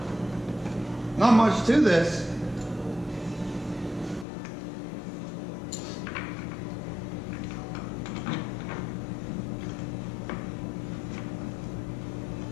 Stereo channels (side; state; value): right; drops out; at 4.2 s